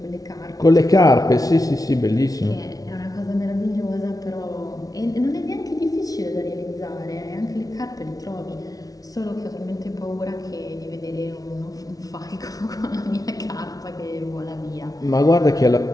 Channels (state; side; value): late; right; 0.18 ms